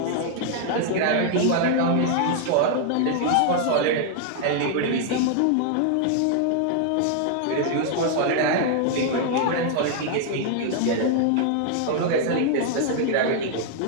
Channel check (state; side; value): different; both; correlation 0.00